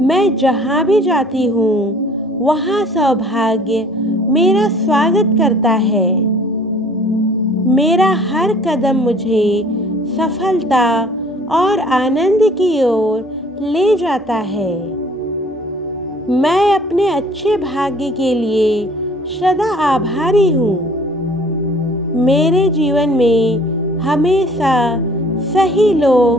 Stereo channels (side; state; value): both; normal; correlation 0.53